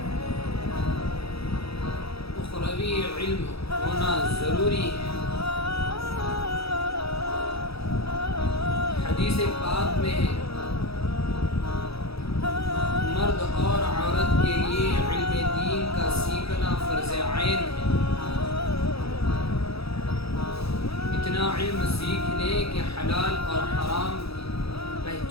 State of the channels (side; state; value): right; late; 0.77 ms